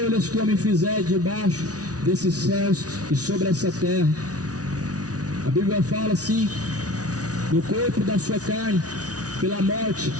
que o homem fizer debaixo desses céus e sobre essa terra. A Bíblia fala assim: no corpo da sua carne, pela morte,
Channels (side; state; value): left; late; 0.68 ms